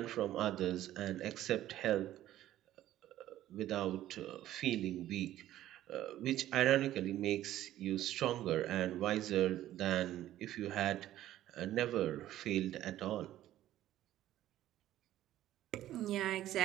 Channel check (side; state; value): left; quieter; 13.5 dB